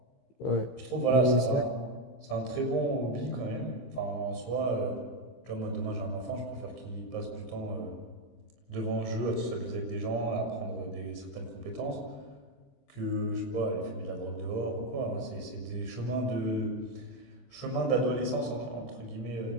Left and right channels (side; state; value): right; late; 15 ms